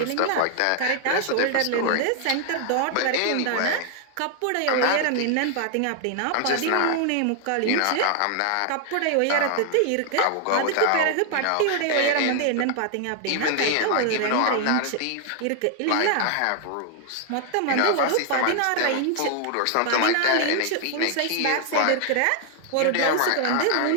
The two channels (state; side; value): different; both; correlation 0.00